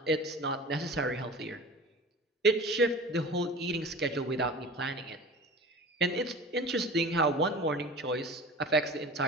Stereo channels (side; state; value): both; normal; correlation 0.37